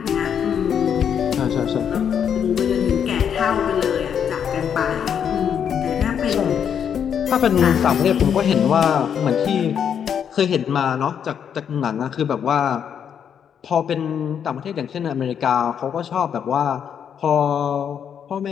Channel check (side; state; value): right; quieter; 8.1 dB